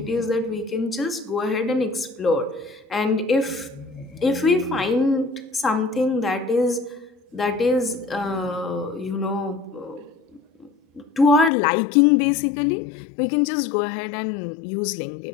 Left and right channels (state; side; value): drops out; right; at 11.5 s